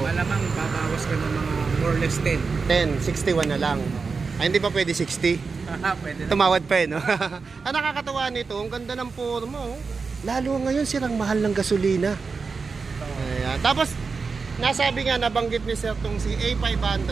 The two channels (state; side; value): quieter; left; 4.8 dB